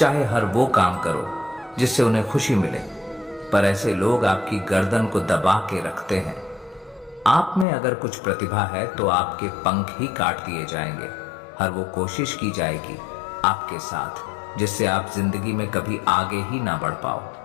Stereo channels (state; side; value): drops out; right; at 7.7 s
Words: हर वो काम करो जिससे उन्हें खुशी मिले, पर ऐसे लोग आपकी गर्दन को दबा के रखते हैं। आप में अगर कुछ प्रतिभा है तो आपके पंख ही काट दिए जाएंगे। हर वो कोशिश की जाएगी आपके साथ जिससे आप जिंदगी में कभी आगे ही ना बढ़ पाओ।